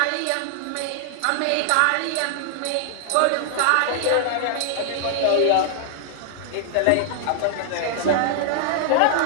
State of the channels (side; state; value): both; different; correlation -0.01